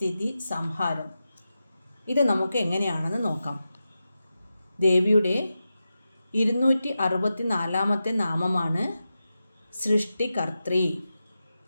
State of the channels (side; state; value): both; inverted; correlation -0.91